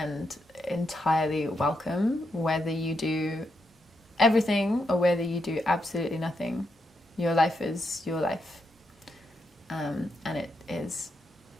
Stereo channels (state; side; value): normal; both; correlation 0.82